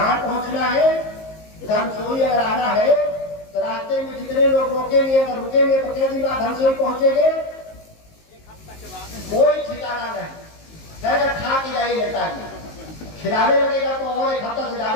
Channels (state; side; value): late; right; 19 ms